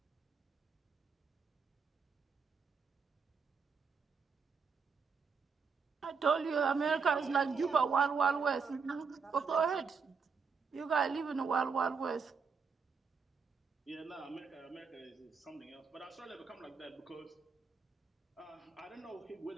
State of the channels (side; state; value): left; quieter; 5.5 dB